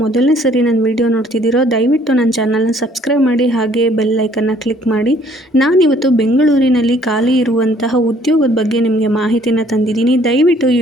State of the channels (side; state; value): both; normal; correlation 0.61